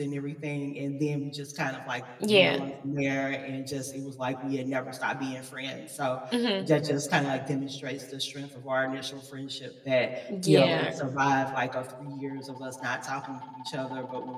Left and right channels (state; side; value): identical; both; correlation 1.00